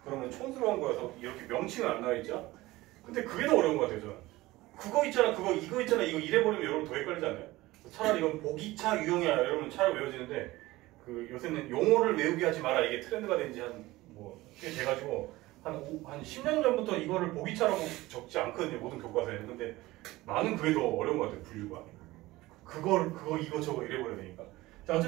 그러면 촌스러운 거여서 이렇게 명칭은 안 나와 있죠. 근데 그게 더 어려운 것 같아요. 저는 그거 있잖아 이거 있잖아 이거 이래버리면 여러분 더 헷갈리지 않나요? 차라리 이건 복이차 유형이야 여러분 차라리 외워지는데 그 요새는 용어를 외우게 하지 마라 이게 트렌드가 된지 꽤 돼가지고 한 10년 전부터 이거를 복이차라고 적지 않거든요 모든 교과서에는. 근데 나는 그게 더 어려운 것 같아요 분류가. 그거 이거 저거 이래버려야 되니까. 자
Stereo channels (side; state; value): left; quieter; 18.8 dB